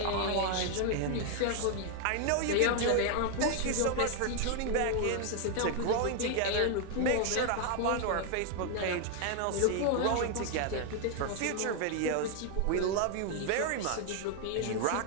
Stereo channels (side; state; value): both; different; correlation 0.00